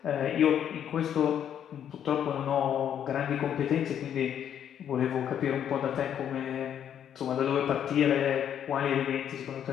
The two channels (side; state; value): right; quieter; 9.4 dB